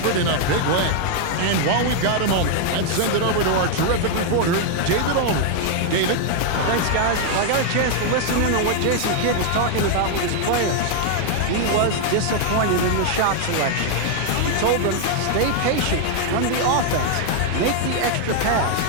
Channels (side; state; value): both; different; correlation 0.00